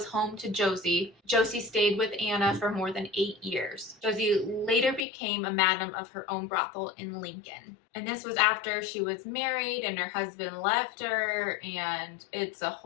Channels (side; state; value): right; drops out; at 5.1 s